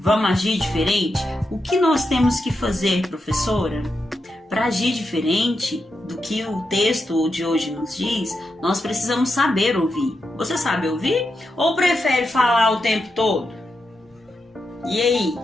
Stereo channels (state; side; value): normal; both; correlation 0.86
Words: agir diferente? O que nós temos que fazer, professora? Para agir diferente do que o texto de hoje nos diz, nós precisamos saber ouvir. Você sabe ouvir? Ou prefere falar o tempo todo? E aí,